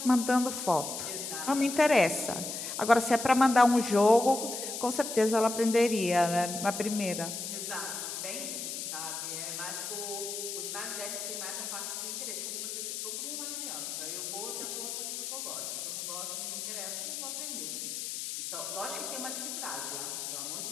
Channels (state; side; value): noise; left; hiss, 5 dB below the sound